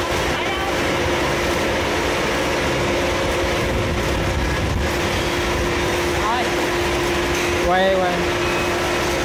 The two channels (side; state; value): both; identical; correlation 1.00